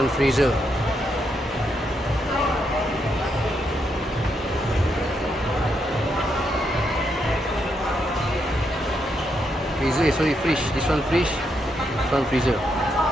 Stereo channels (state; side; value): normal; both; correlation 0.80